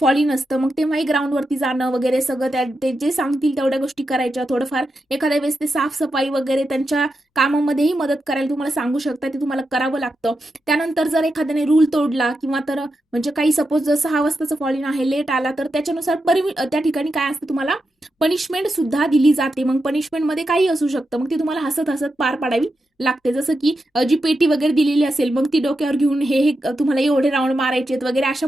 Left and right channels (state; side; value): normal; both; correlation 0.88